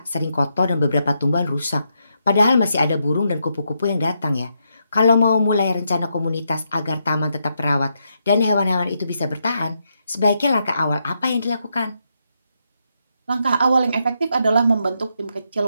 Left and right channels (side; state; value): both; inverted; correlation -0.81